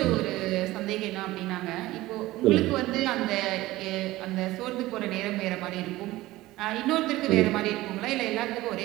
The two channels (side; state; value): left; quieter; 17.7 dB